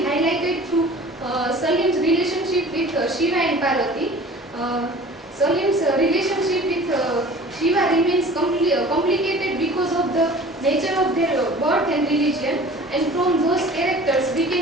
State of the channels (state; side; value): normal; both; correlation 0.44